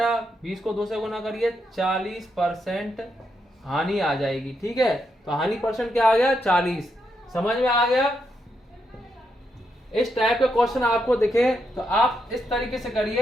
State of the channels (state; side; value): normal; both; correlation 0.81